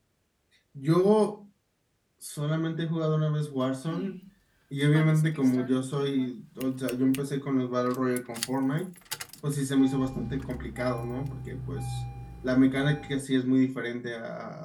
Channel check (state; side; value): identical; both; correlation 1.00